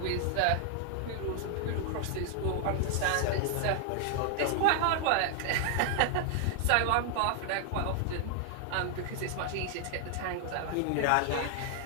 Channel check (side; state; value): both; different; correlation 0.00